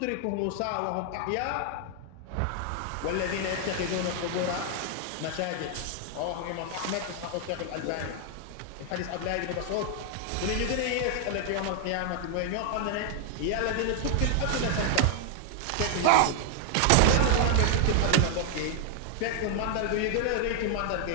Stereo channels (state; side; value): different; both; correlation 0.00